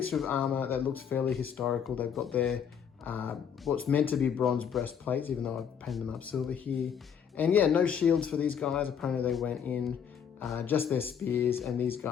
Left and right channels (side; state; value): right; quieter; 7.8 dB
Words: of armor that looks fairly historical. They've got their what's meant to be bronze breastplates, even though I've painted them up silver here. And yeah, no shields for these guys. Apparently they went in just their spears, and these